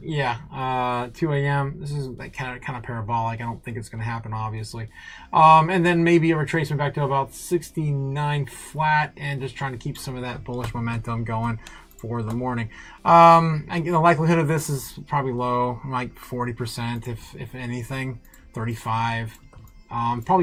2 a.m. This is like kind of parabolic. I don't think it's going to happen, obviously. And then maybe a retracement back to about 69 flat, and just trying to keep some of that bullish momentum going for the morning. The likelihood of this is probably low, like 40%, if anything, 35.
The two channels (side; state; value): both; identical; correlation 1.00